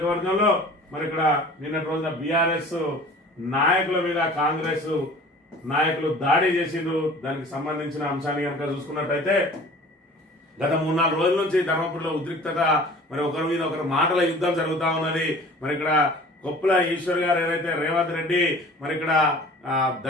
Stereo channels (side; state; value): both; normal; correlation 0.45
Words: మరి ఇక్కడ నిన్నటి రోజున బీఆర్ఎస్ నాయకుల మీద కాంగ్రెస్ నాయకులు దాడి చేసిండ్రు. దానికి సంబంధించిన అంశాన్ని కనుక చూసుకున్నట్టయితే గత 3-4 రోజుల నుంచి ధర్మపురిలో ఉద్రిక్తత, మరి ఒకరి మీద ఒకరు మాటల యుద్ధం జరుగుతా ఉన్నది. మరి ఇక్కడ కొప్పుల ఈశ్వర్ గారు ఏదైతే రేవంత్ రెడ్డి మరి ఇక్కడ